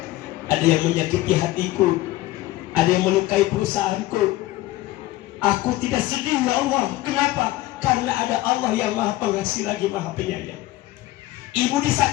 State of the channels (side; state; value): right; quieter; 17.0 dB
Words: ada yang menyakiti hatiku, ada yang melukai perusahaanku, aku tidak sedih ya Allah. Kenapa? Karena ada Allah yang maha pengasih lagi maha penyayang. Ibu